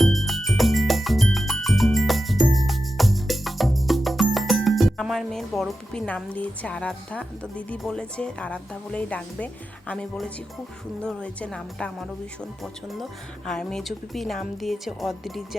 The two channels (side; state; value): both; normal; correlation 0.90